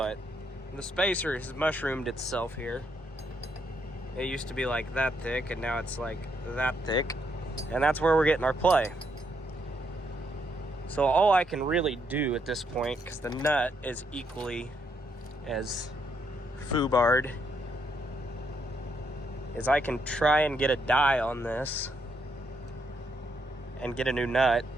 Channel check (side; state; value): both; normal; correlation 0.75